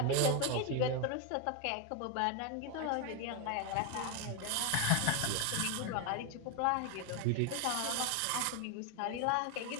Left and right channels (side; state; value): both; different; correlation 0.01